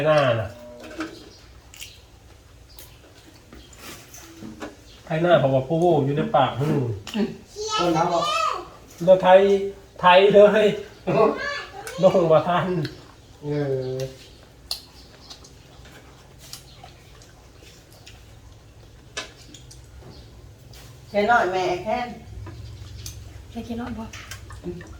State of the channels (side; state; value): both; identical; correlation 1.00